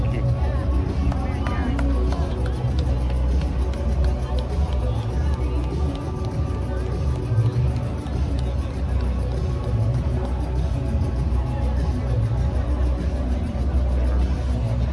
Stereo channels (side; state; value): both; identical; correlation 1.00